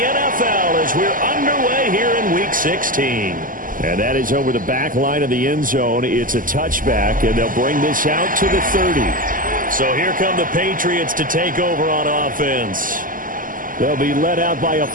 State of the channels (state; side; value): late; left; 0.40 ms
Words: as we're underway here in Week 16. And that is over the back line of the end zone. It's a touchback, and they'll bring this out to the 30. So here come the Patriots to take over on offense. They'll be led out by a